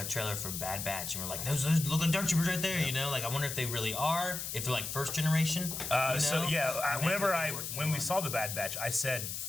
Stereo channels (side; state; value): left; noise; hiss, 5 dB below the sound